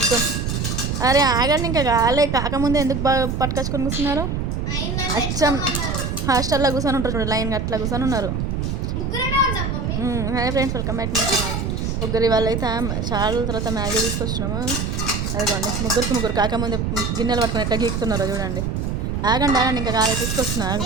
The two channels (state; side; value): noise; right; rumble, 1 dB below the sound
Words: అరే ఆగండి, ఇంకా కాలే కాకముందే ఎందుకు బాగా పట్టుకొచ్చుకొని కూర్చున్నారు? అచ్చం హాస్టల్లో కూర్చొని ఉంటారు చూడు, లైన్గా అట్లా కూర్చొని ఉన్నారు. Hi friends, welcome back my channel. ముగ్గురు వాళ్ళు అయితే చాలా తర్వాత మ్యాగీ తీసుకొచ్చినాము. అదిగోండి ముగ్గురికి ముగ్గురు కాకముందే గిన్నెలు పట్టుకొని ఎట్లా గీకుతున్నారో చూడండి. ఆగండి ఆగండి, ఇంకా కాలే తీసుకొస్తున్నా.